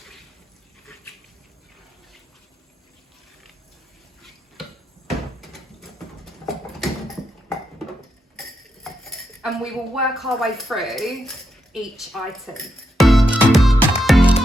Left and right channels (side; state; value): both; normal; correlation 0.82